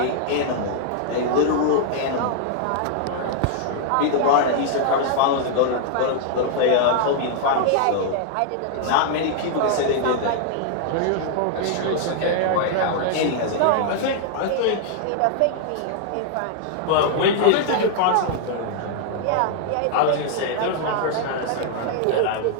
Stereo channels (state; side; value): different; both; correlation 0.00